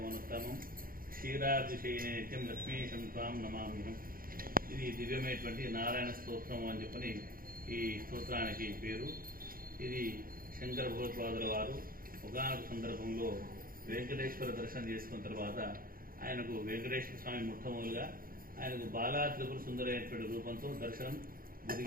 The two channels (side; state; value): left; late; 0.42 ms